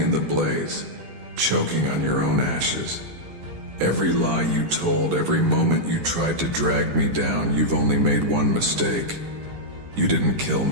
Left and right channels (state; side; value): late; left; 9.9 ms